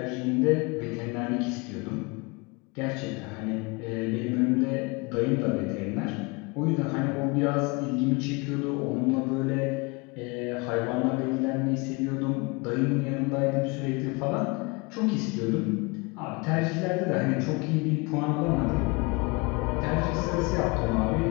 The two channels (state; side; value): quieter; right; 27.7 dB